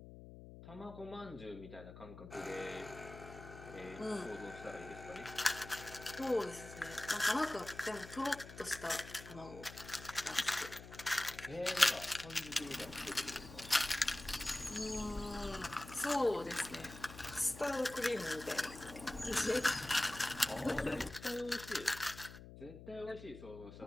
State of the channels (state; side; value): noise; left; hum, 14 dB below the sound